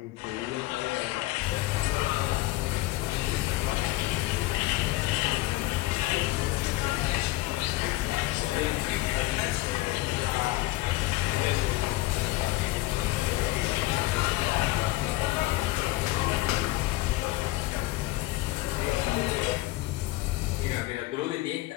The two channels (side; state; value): right; quieter; 19.1 dB